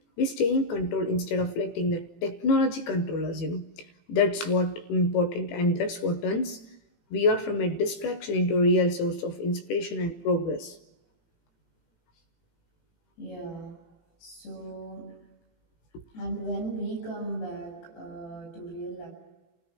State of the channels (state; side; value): late; right; 18 ms